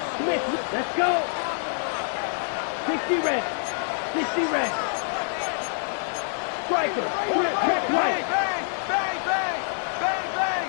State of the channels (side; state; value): right; silent; 59 dB below the other